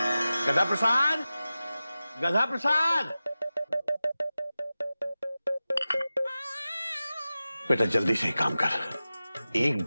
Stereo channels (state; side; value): inverted; both; correlation -0.95